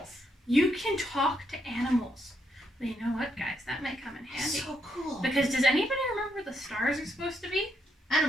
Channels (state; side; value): normal; both; correlation 0.78